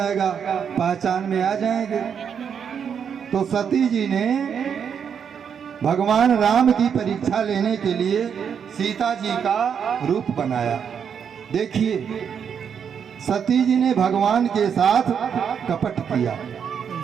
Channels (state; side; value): quieter; left; 7.4 dB